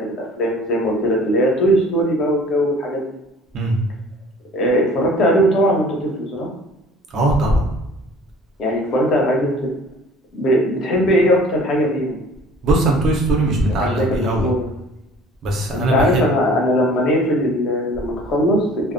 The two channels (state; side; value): normal; both; correlation 0.49